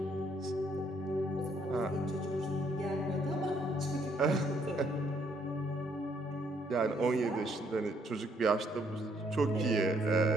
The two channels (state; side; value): normal; both; correlation 0.69